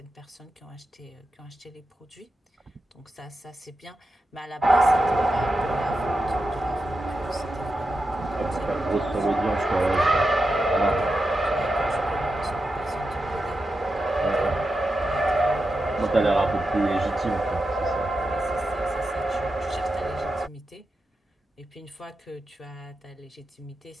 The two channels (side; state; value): both; normal; correlation 0.89